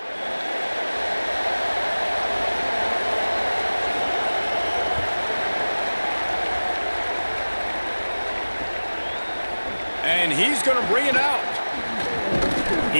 And he's going to bring it out.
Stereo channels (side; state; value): both; inverted; correlation -1.00